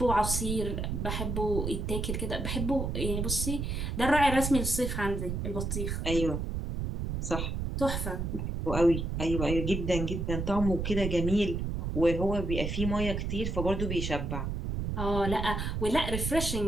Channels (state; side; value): noise; right; rumble, 2 dB below the sound